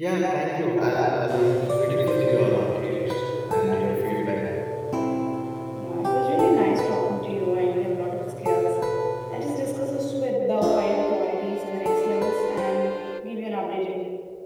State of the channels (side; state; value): both; identical; correlation 1.00